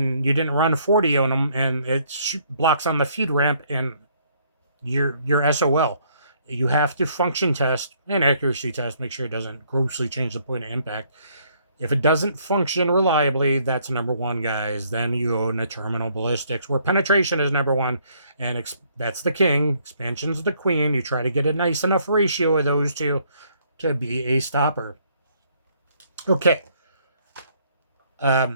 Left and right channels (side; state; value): both; inverted; correlation -0.66